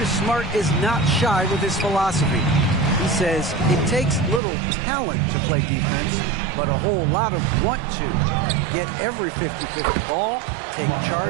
Smart is not shy with his philosophy. He says it takes little talent to play defense, but a whole lot of want to. Get every 50-50 ball, take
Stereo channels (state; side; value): drops out; left; at 4.4 s